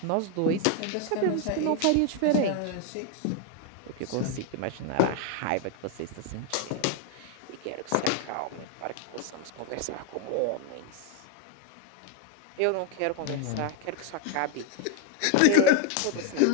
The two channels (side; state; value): both; different; correlation 0.01